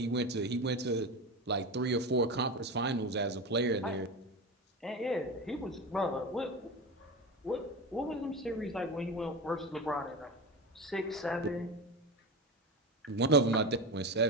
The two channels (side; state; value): both; normal; correlation 0.23